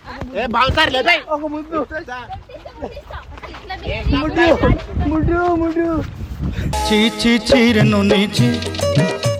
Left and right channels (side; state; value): both; identical; correlation 1.00